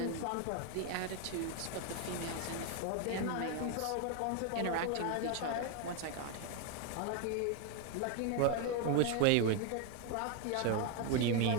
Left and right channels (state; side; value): different; both; correlation 0.01